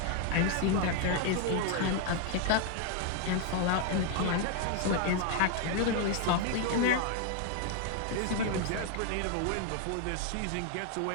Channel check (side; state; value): both; different; correlation 0.00